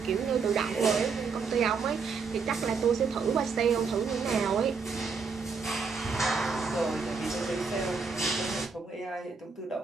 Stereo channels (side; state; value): left; quieter; 5.1 dB